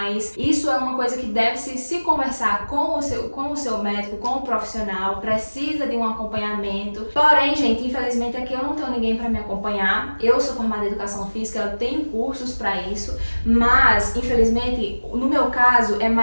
isso é uma coisa que deve se conversar com o seu médico, com o profissional, precisa de um acompanhamento. Porém, gente, infelizmente aqui eu não tenho ninguém para me acompanhar. Eu sou formada em educação física, eu tenho cursos para isso, mas infelizmente no meu caso é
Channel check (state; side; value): inverted; both; correlation -1.00